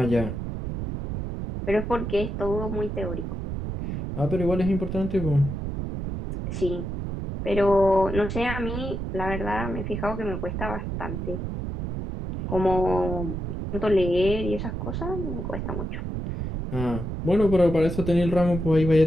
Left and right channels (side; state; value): right; noise; rumble, 4 dB below the sound